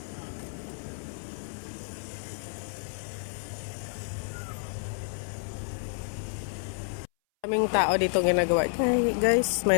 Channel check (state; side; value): silent; right; 58 dB below the other